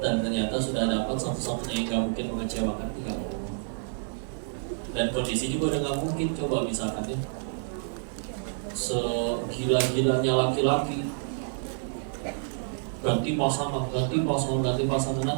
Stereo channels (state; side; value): silent; left; digital silence